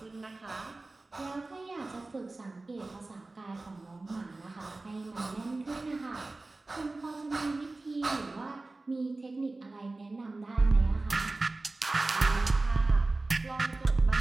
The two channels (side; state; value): left; quieter; 3.2 dB